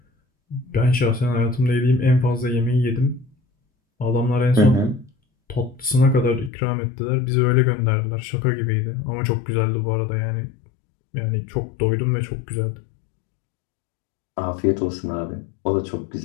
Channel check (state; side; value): drops out; right; at 6.5 s